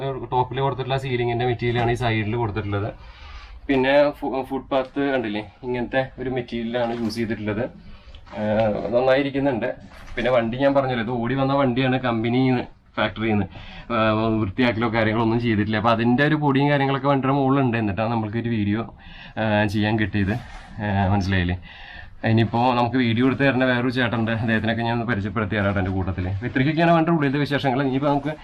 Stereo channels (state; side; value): identical; both; correlation 1.00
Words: ടോപ്പിൽ കൊടുത്തിട്ടുള്ള സീലിങ്ങിൻ്റെ മെറ്റീരിയലാണ് ഈ സൈഡിൽ കൊടുത്തിട്ടുള്ളത്. പിന്നെ ഫുട്പാത്ത് കണ്ടില്ലേ, ഇങ്ങനത്തെ ഒരു മെറ്റീരിയലാണ് യൂസ് ചെയ്തിട്ടുള്ളത്. നന്നായിരിക്കുന്നുണ്ട്. പിന്നെ വണ്ടി ഞാൻ പറഞ്ഞല്ലോ, ഇത് ഓടി വന്ന വണ്ടിയാണ്, കമ്പനിയിൽ നിന്ന് ഫാക്ടറിയിൽ നിന്ന് വൃത്തിയാക്കലോ കാര്യങ്ങളോ ഒന്നും ചെയ്തിട്ടില്ല. അപ്പോൾ അതിൻ്റെ ഒരു പൊടിയും കാര്യങ്ങളൊക്കെ വണ്ടിയുടെ മുകളിലുണ്ട്. എന്നിട്ടാണ് നമ്മൾക്കൊരു വീഡിയോ ചെയ്യാൻ കിട്ടിയത്, മനസ്സിലായില്ലേ. ഇനിയിപ്പോൾ നമുക്ക് വീഡിയോ എടുത്ത് തരുന്ന വേറൊരു ചേട്ടനുണ്ട്, അദ്ദേഹത്തിനൊക്കെ ഞാൻ പരിചയപ്പെടുത്തി തരാം എൻ്റെ കൂട്ടത്തിൽ. ഇത്രയ്ക്കൊക്കെയാണ് വണ്ടിയുടെ ഉള്ളിലത്തെ വിശേഷങ്ങൾ. ഇനിയിപ്പോൾ നമുക്ക്